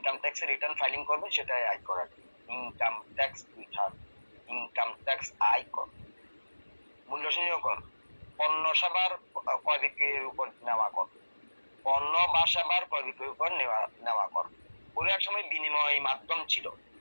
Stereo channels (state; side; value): inverted; both; correlation -1.00